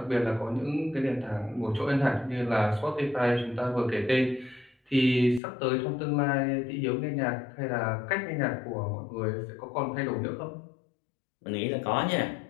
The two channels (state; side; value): drops out; right; at 5.4 s